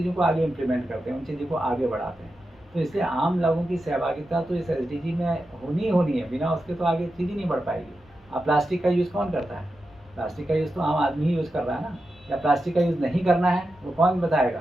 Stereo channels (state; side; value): normal; both; correlation 0.90